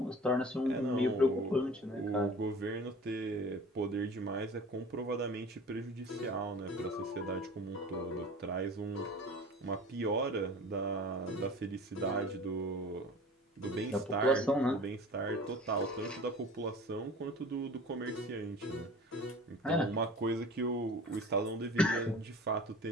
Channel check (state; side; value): normal; both; correlation 0.41